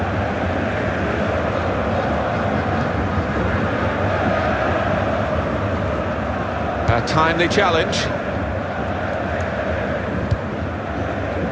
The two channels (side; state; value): both; identical; correlation 1.00